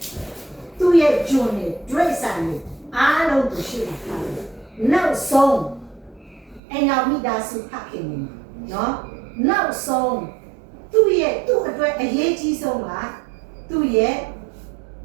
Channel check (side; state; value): left; drops out; at 6.6 s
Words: သူ့ရဲ့ဂျွန်နဲ့ဒရိတ်ဆိုင်နဲ့အားလုံးကိုရှိတာနောက်ဆုံးအဲ့နောက်မိသားစုဖခင်နေနော်နောက်ဆုံးသူ့အတွက်အရေးကြီးဆုံးကသူ့ရဲ့